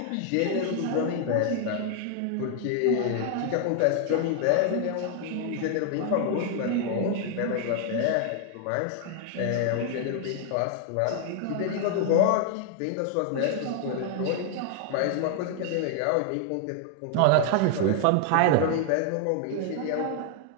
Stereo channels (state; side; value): different; both; correlation 0.00